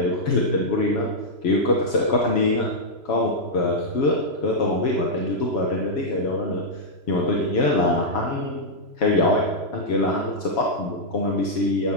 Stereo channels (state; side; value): late; right; 3.0 ms